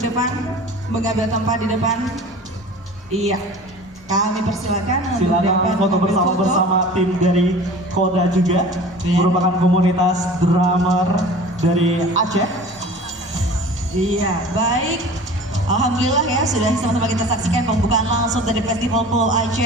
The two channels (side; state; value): both; normal; correlation 0.41